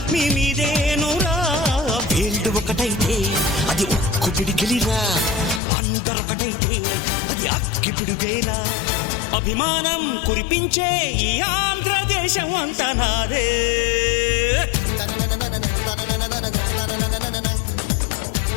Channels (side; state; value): right; drops out; at 5.6 s